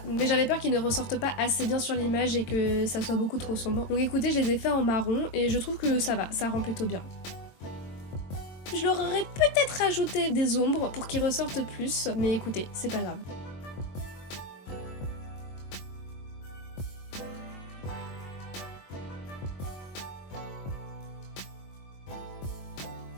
mais j'avais peur qu'ils ne ressortent pas assez bien sur l'image et que ça soit beaucoup trop sombre. Donc écoutez, je les ai fait en marron et je trouve que ça va, ça rend plutôt bien. Je leur aurais peut-être rajouté des ombres pour qu'ils ressortent plus, mais écoutez, c'est pas grave.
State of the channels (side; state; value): right; late; 22 ms